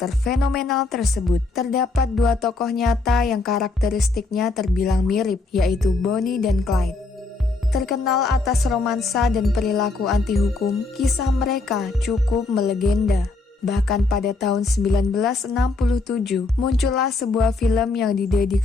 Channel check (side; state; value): right; quieter; 3.5 dB